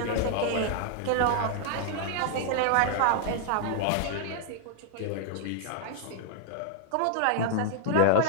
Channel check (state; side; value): different; both; correlation 0.00